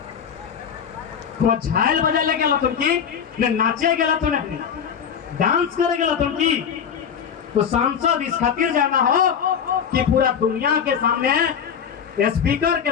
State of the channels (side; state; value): right; quieter; 7.6 dB